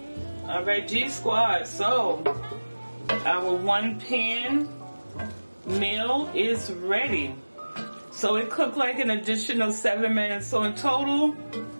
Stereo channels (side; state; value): both; inverted; correlation -1.00